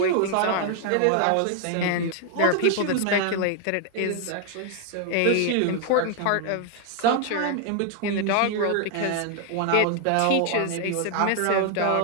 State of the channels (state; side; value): different; both; correlation 0.00